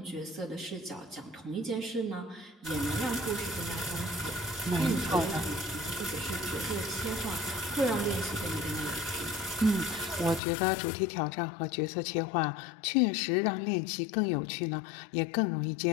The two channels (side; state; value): right; drops out; at 10.4 s